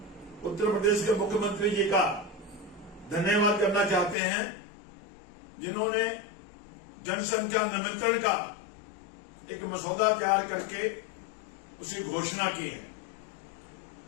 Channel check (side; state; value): right; drops out; at 4.2 s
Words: उत्तर प्रदेश के मुख्यमंत्री जी का धन्यवाद करना चाहते हैं, जिन्होंने जनसंख्या नियंत्रण का एक मसौदा तैयार करके उसे घोषणा की है।